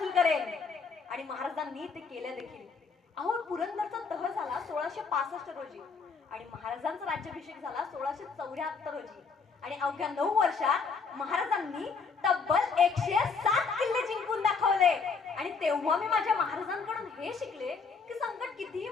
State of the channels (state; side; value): quieter; right; 5.1 dB